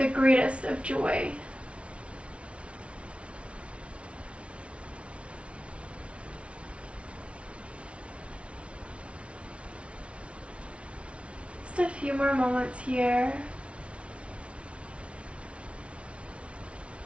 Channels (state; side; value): late; left; 0.061 ms